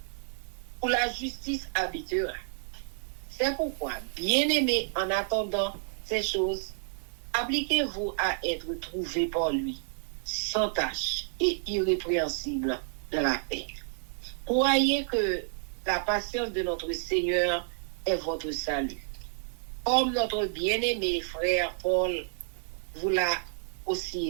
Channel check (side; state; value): left; silent; digital silence